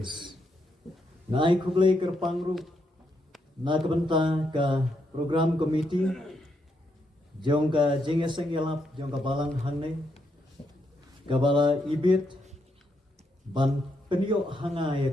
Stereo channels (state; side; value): normal; both; correlation 0.79